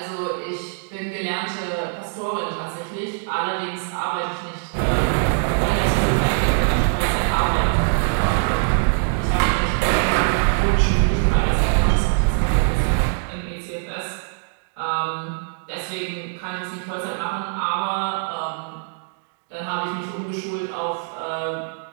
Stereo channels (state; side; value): silent; left; digital silence